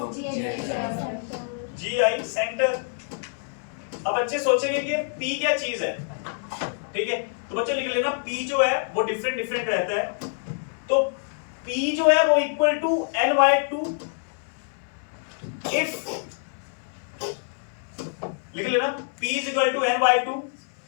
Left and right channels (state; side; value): silent; right; 61 dB below the other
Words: GI centre. अब बच्चे सोचेंगे कि p क्या चीज है, ठीक है। तो बच्चों लिख लेना p जो है वो डिफरेंट रहता है, तो p जो है वो इक्वल टू n/2 इफ, लिख लेना p is equal to n/2